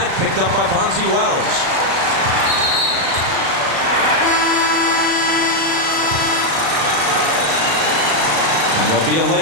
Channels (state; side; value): late; left; 36 ms